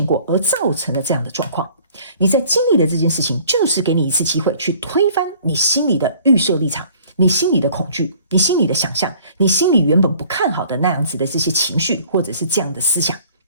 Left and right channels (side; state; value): both; inverted; correlation -0.53